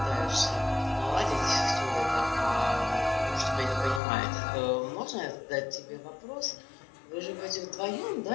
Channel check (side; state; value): right; drops out; at 4.0 s